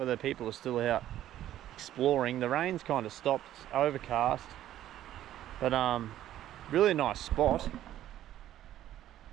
people are still out exploring. The rain's kind of stopped, it's overcast, but really nice spot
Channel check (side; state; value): left; quieter; 12.6 dB